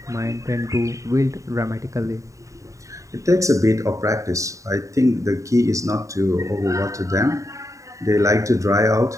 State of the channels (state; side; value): late; left; 0.16 ms